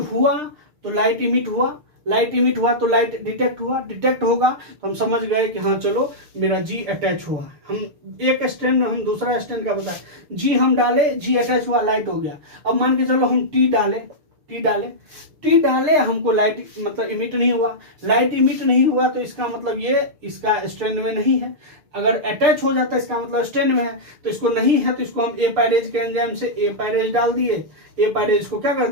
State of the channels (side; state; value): left; late; 6.7 ms